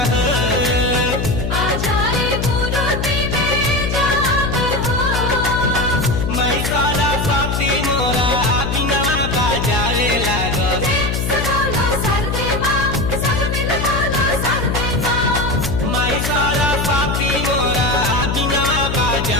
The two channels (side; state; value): left; noise; hum, 2 dB below the sound